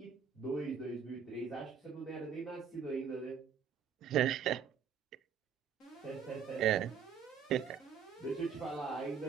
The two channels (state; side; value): quieter; left; 7.1 dB